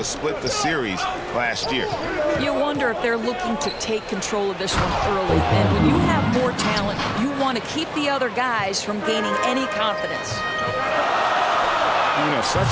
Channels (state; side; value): identical; both; correlation 1.00